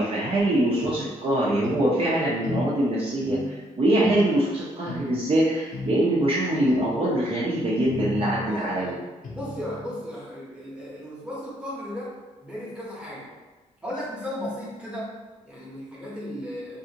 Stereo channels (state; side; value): normal; both; correlation 0.71